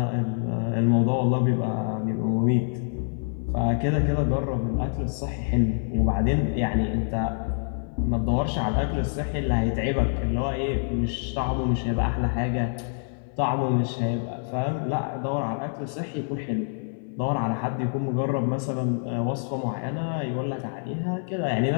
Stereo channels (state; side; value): silent; right; 60 dB below the other